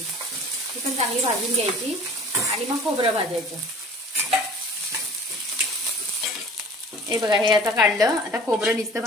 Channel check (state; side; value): normal; both; correlation 0.46